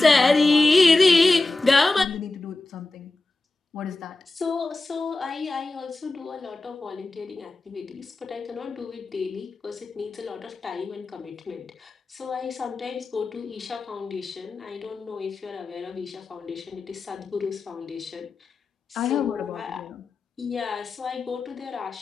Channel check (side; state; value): right; quieter; 3.2 dB